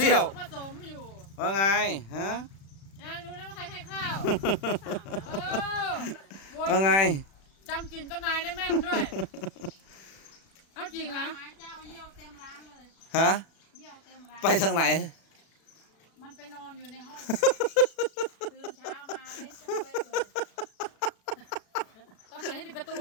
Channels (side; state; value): right; late; 36 ms